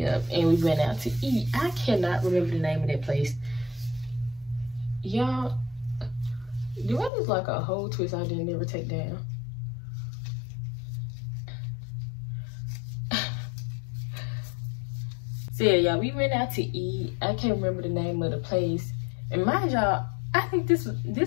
up, and we went out to eat. I cannot remember the name of that place. Y'all, do I look like a whole twist I didn't ever take down? So yeah, y'all, we went out to eat. I can't remember the name of the place. And mind y'all, I think this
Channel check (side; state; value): right; drops out; at 7.1 s